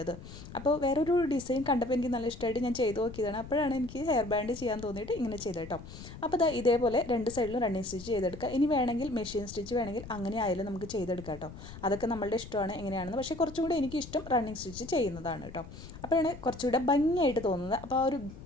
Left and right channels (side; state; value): left; noise; rumble, 14 dB below the sound